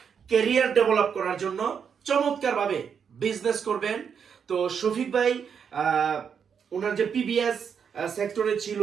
ক্যারিয়ার ডেভেলপ করার জন্য চমৎকারভাবে বিজনেস করবেন। তো শফিক ভাই ওনার যে পিবিএস সেক্টরে ছিল,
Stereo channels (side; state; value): left; quieter; 7.1 dB